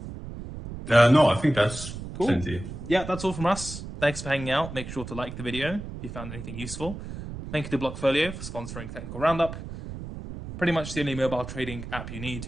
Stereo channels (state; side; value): noise; right; rumble, 10 dB below the sound